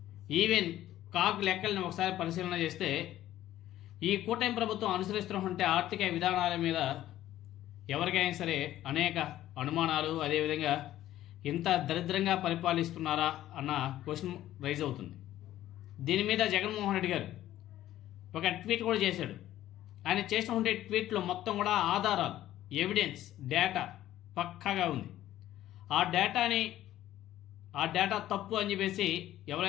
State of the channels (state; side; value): quieter; right; 13.5 dB